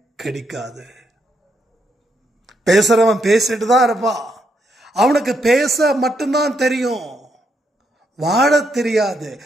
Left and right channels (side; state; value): both; normal; correlation 0.77